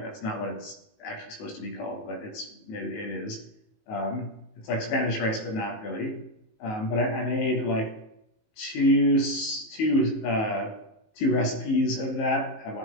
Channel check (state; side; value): late; right; 19 ms